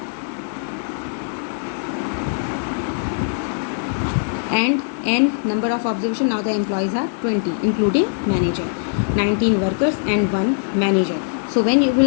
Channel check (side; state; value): right; silent; digital silence